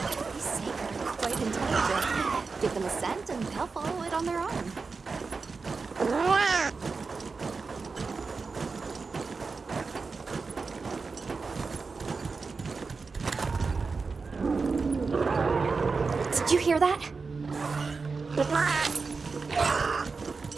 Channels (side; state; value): left; quieter; 4.5 dB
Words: These sacred are quite intelligent. Give them a scent and they'll follow it on their own. Did you hear that?